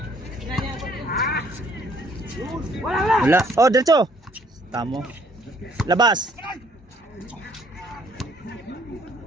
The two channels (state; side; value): normal; both; correlation 0.63